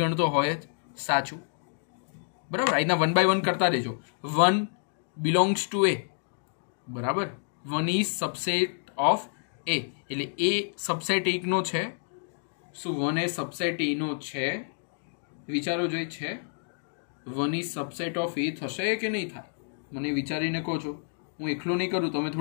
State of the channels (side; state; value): right; silent; digital silence